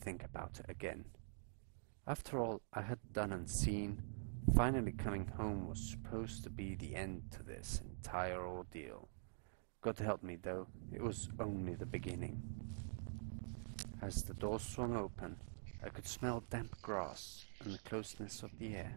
about it again. After all I had done and seen, finally coming home was supposed to be the end to this entire ordeal. God help me, though, it was only the beginning. As the door swung open, I could smell damp grass and the closeness of the air.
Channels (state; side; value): silent; left; digital silence